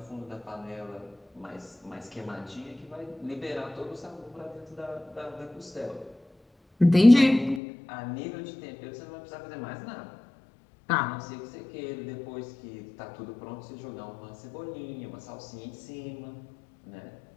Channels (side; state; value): right; drops out; at 7.6 s